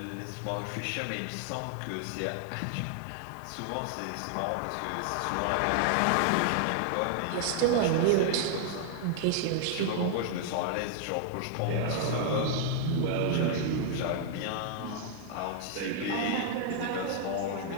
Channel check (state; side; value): different; both; correlation 0.00